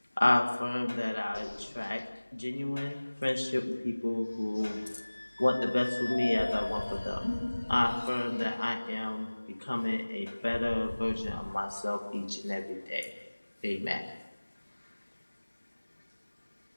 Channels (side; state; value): both; inverted; correlation -1.00